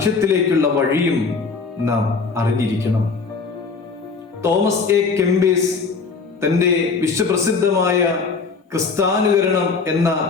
വഴിയും നാം അറിഞ്ഞിരിക്കണം. തോമസ് എ കെംബീസ് തന്റെ വിശ്വപ്രസിദ്ധമായ ക്രിസ്താനുകരണം എന്ന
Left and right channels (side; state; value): right; quieter; 4.7 dB